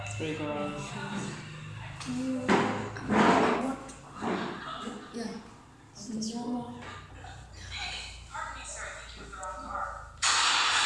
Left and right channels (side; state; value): both; identical; correlation 1.00